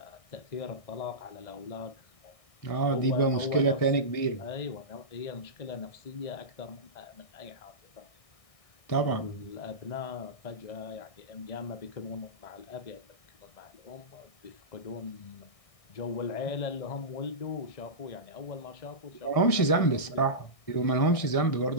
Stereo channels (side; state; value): right; late; 1.6 ms